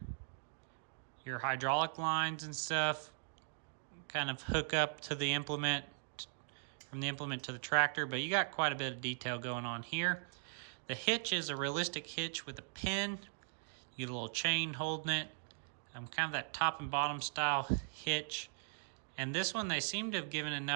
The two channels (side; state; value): left; silent; digital silence